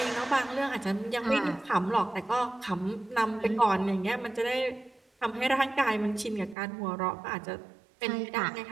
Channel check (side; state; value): left; drops out; at 6.6 s